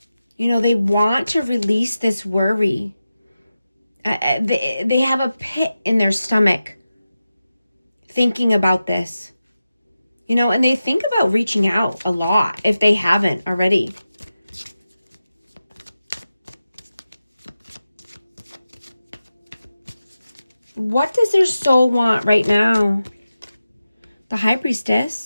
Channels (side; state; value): both; inverted; correlation -0.93